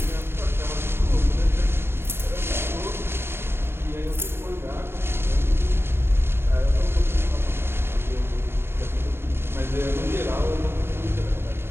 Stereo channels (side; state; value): left; late; 0.12 ms